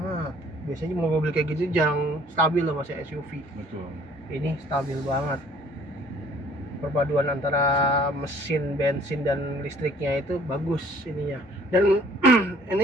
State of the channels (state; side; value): normal; both; correlation 0.56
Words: Biasanya mobil kayak gitu jarang stabil loh Mas ya, SUV. Betul. Ini stabil banget. Perpaduan antara mesin bensin dan listriknya itu bagus ininya. Dan